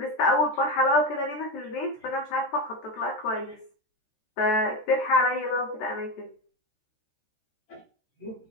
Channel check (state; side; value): late; right; 14 ms